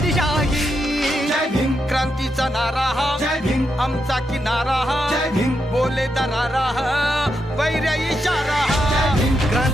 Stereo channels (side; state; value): both; normal; correlation 0.83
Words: दिशाही. जय भीम क्रांतीचा नारा हा, जय भीम आमचा किनारा हा, जय भीम बोले दरारा हा, वैर्य इशारा हा.